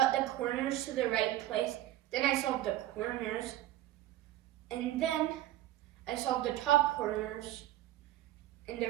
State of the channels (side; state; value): left; quieter; 14.0 dB